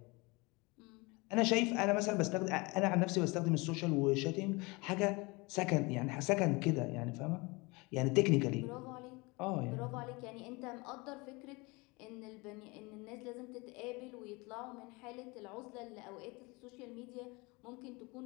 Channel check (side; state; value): right; quieter; 25.9 dB